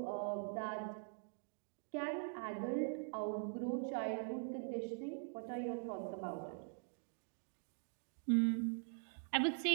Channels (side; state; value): left; silent; digital silence